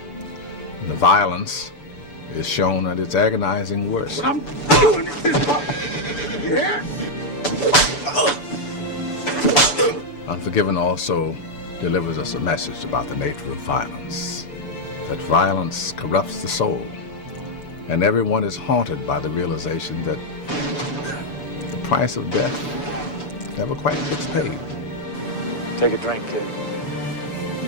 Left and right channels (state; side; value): late; right; 6.9 ms